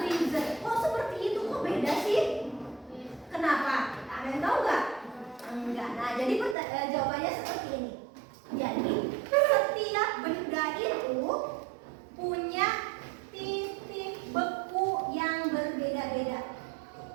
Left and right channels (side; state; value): left; drops out; at 6.6 s